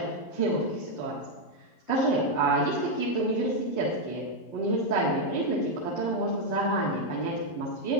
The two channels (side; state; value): right; late; 11 ms